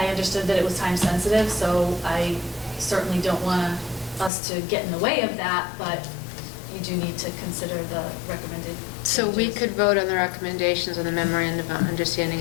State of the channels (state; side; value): drops out; right; at 4.3 s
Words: understood that it was time sensitive, so I certainly don't want us to get in the way of that, but you do need to consider the recommended So we changes. could vote on the recommendations on the memorandum of understanding,